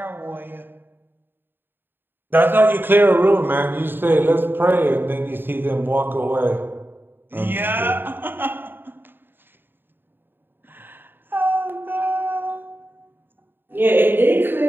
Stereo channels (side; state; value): left; late; 0.096 ms